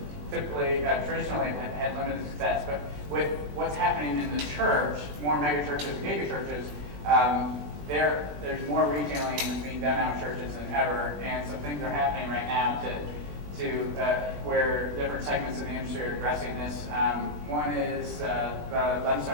typically, traditionally have had limited success, but with what's happening in the church, more mega churches and giga churches, there's more retailing that's being done out in churches than ever, and some things are happening right now to where different segments of the industry are addressing this. One is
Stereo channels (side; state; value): left; late; 20 ms